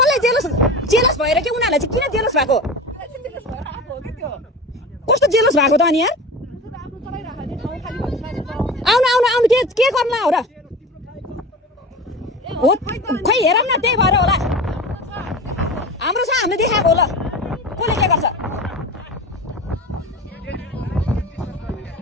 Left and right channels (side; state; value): both; normal; correlation 0.32